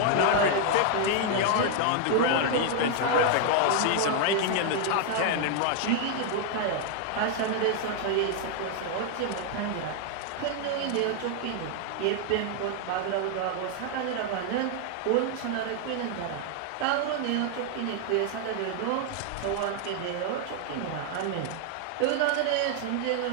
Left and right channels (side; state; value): both; different; correlation 0.00